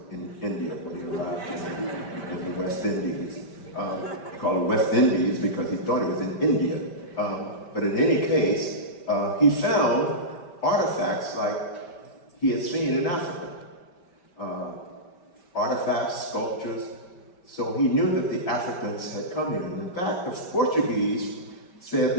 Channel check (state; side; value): late; right; 5.1 ms